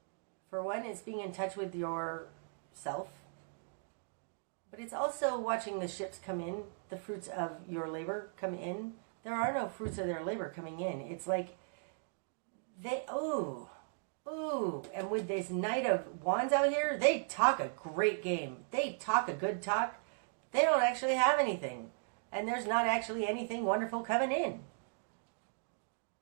for one, it's being in touch with yourself. But it's also watching the ships come in, the fruits of your labor come in. There are no fruits of their labor coming in. It's like and with this Knight of Wands out here, they talk a great game. They talk a good talk. They don't actually have anything. And there's not actually anything wonderful coming in.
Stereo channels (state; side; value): silent; left; digital silence